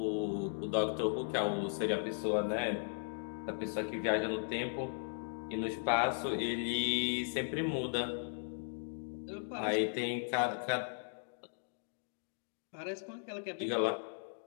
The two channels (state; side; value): silent; right; digital silence